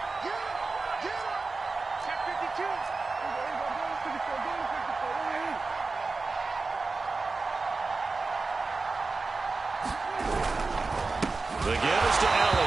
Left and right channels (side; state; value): left; quieter; 3.9 dB